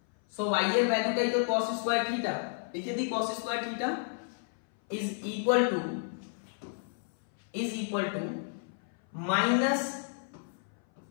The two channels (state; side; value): silent; right; 57 dB below the other